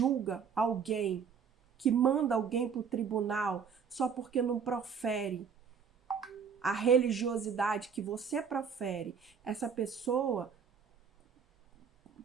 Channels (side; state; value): left; quieter; 6.7 dB